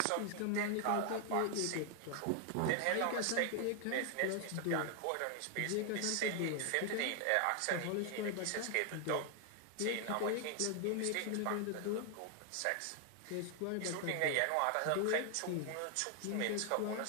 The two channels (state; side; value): different; both; correlation 0.00